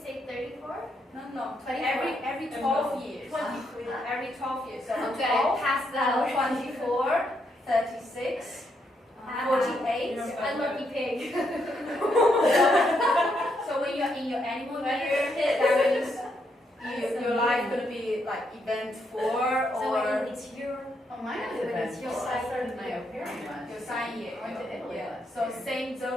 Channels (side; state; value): both; normal; correlation 0.77